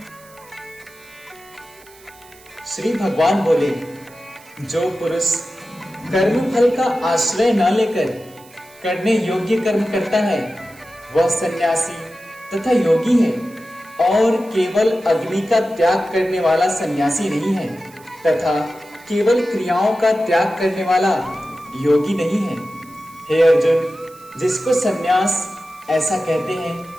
श्री भगवान बोले, जो पुरुष कर्म फल का आश्रय न लेकर करने योग्य कर्म करता है वह सन्यासी तथा योगी है, और केवल अग्नि का त्याग करने वाला सन्यासी नहीं है तथा केवल क्रियाओं का त्याग करने वाला योगी नहीं है। हे अर्जुन, जिसको सन्यास ऐसा कहते हैं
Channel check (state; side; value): noise; right; hiss, 25 dB below the sound